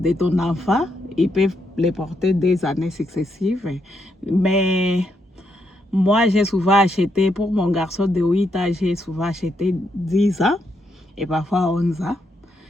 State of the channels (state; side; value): normal; both; correlation 0.79